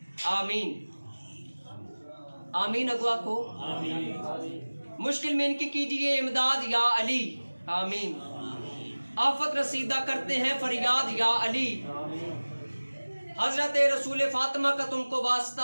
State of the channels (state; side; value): inverted; both; correlation -1.00